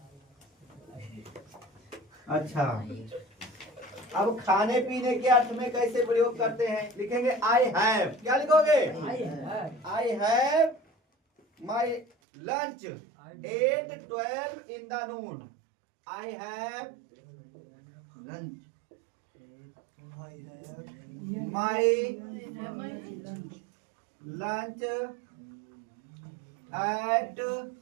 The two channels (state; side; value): drops out; left; at 12.1 s